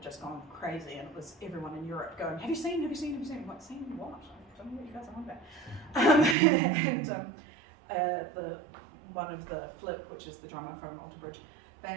just gone crazy, and it was everyone in Europe going, have you seen? I'm like, seen what? I don't know what you guys are on about. And one of the Flip, which is the drummer from Alter Bridge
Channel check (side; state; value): left; drops out; at 6.4 s